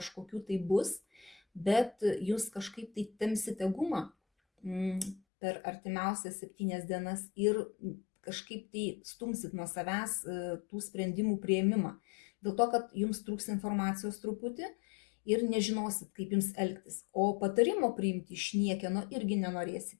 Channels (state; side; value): drops out; right; at 5.2 s